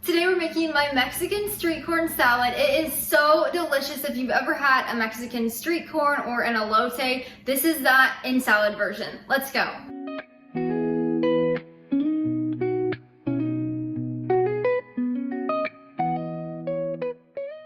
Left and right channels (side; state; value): both; identical; correlation 1.00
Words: Today we're making my Mexican street corn salad. It is so delicious. If you've ever had a Mexican street corn or an elote, this is that in salad version. Let's go.